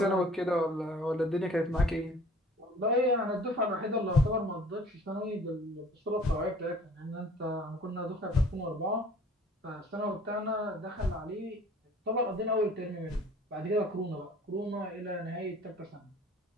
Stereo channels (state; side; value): normal; both; correlation 0.50